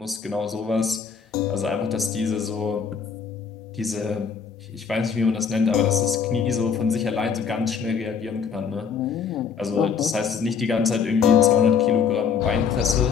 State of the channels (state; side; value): quieter; right; 6.4 dB